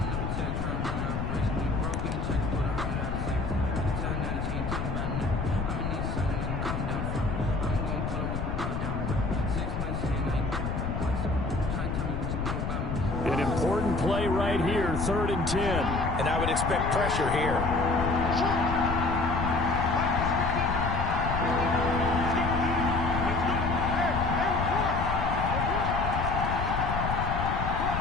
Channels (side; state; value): left; noise; rumble, 2 dB below the sound